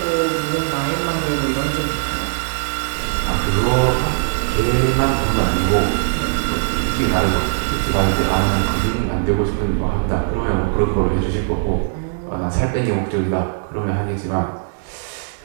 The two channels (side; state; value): left; silent; digital silence